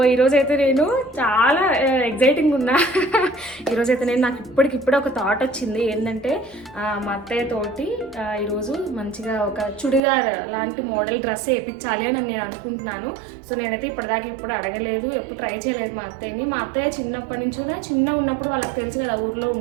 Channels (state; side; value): drops out; left; at 10.0 s